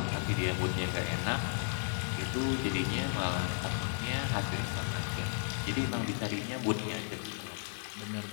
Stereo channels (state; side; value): silent; right; digital silence